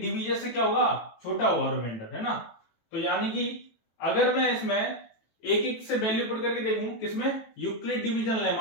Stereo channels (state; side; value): late; right; 18 ms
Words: डिवीजर से क्या होगा, छोटा होगा रिमाइंडर, है ना। तो यानी कि अगर मैं इसमें एक एक से वैल्यू पुट करके देखूं, किसमें, यूक्लिड डिवीजन